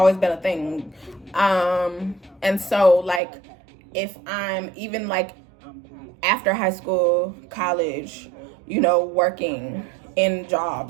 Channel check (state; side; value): drops out; left; at 3.2 s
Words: been a thing. And so, like, if I'm even, like, after high school, college, you know, working in